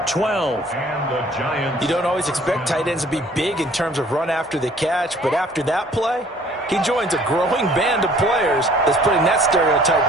12. And the Giants. You don't always expect tight ends to be big in terms of run after the catch, but after that play, he joins a growing band of players that's putting that stereotype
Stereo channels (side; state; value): both; normal; correlation 0.55